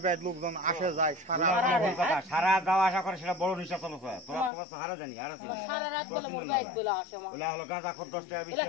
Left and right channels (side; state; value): right; drops out; at 4.5 s